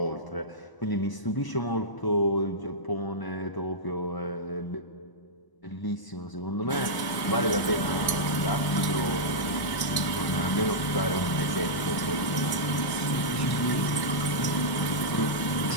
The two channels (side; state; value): right; late; 1.0 ms